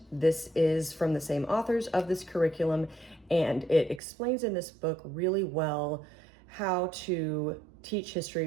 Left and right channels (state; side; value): drops out; left; at 4.0 s